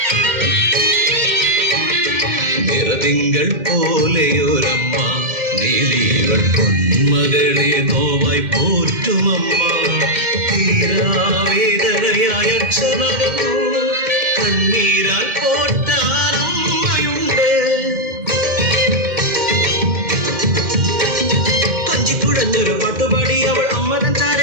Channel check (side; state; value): left; late; 2.1 ms